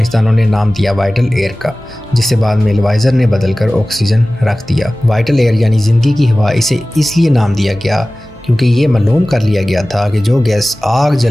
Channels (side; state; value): both; normal; correlation 0.97